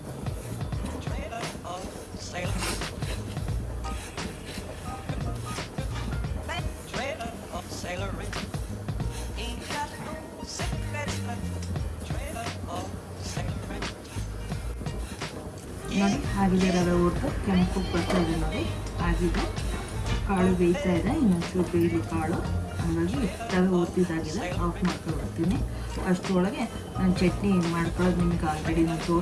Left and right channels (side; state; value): both; identical; correlation 1.00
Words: ನೋಡಿ ಆಗಿದೆ, ರವೆ ಹುರಿದು ಕೆಂಪು ಬರ್ತಾ ಇದೆ. ನೋಡಿ ಆಗಿದೆ, ಕಾಳು ಬೇಯ್ತಾ ಇದೆ. ಇನ್ನೊಂಚೂರು ಬೇಯಲಿ ಕಾಳು. ಹಾಗಾಗಿ ರವೆ ಹುರಿದಿದ್ದಾಗಿದೆ, ಆಫ್ ಮಾಡ್ಕೊಳ್ತೀನಿ. ಅಷ್ಟರೊಳಗೆ ನಾನು ಚಟ್ನಿ ಮಾಡ್ಕೊಳ್ಳೋದು ನಿಮ್ಗೆ ಆಲ್ರೆಡಿ ನಾನು